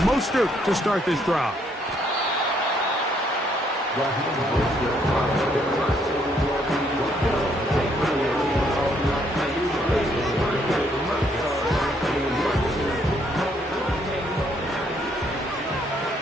Mostert to start this drive.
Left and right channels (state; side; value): normal; both; correlation 0.70